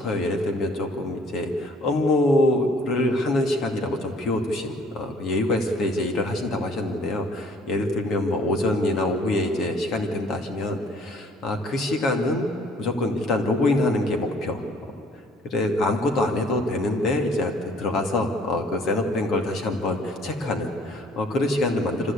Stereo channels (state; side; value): normal; both; correlation 0.58